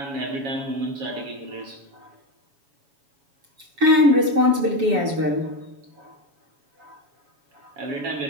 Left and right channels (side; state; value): left; late; 7.1 ms